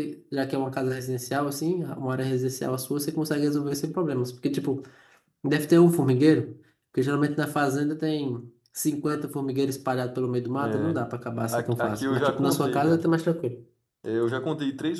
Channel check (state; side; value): identical; both; correlation 1.00